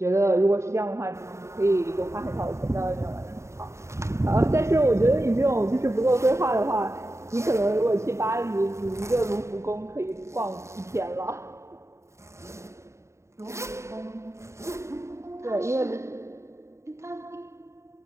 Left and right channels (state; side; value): late; left; 0.14 ms